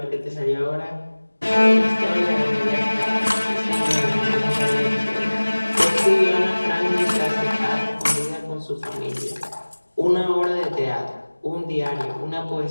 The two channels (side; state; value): both; inverted; correlation -1.00